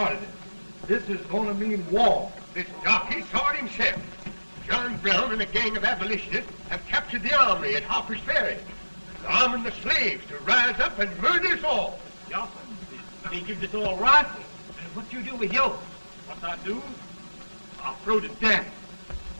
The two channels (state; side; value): inverted; both; correlation -1.00